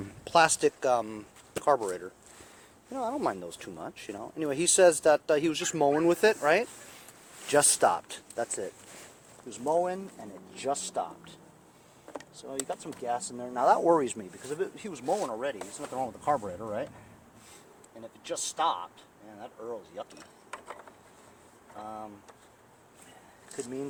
plastic carburetor. You know, I don't mind those too much, you know. Anyway, he says that he was just mowing with it, right? Just stopped. That's it. He was mowing and it just stopped. So you got some gas in there. Now that worries me because if he was mowing already, there's nothing wrong with the carburetor, right? And if it just stopped, man, that Earl's yucky. Could mean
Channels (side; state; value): both; identical; correlation 1.00